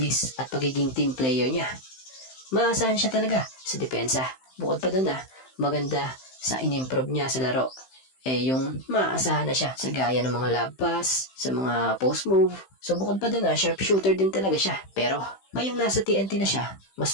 at pagiging team player niya. Maasahan siya talaga sa depensa. Bukod pa doon maganda sa in-improve niya sa laro. Yung maasahan na siya sa gaya ng mga lob pass, sa mga post move. So bukod pa doon sharpshooter din talaga siya. Pero ngayong nasa TNT na siya,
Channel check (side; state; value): right; late; 15 ms